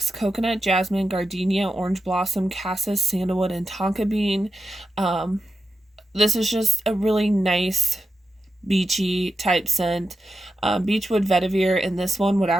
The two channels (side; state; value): both; normal; correlation 0.89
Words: Coconut, jasmine, gardenia, orange blossom, cassis, sandalwood, and tonka bean. This is just a really nice beachy type scent. Beechwood vetiver and this one would